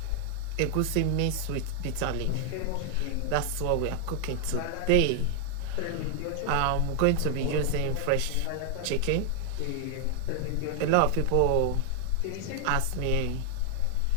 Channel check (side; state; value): both; different; correlation 0.00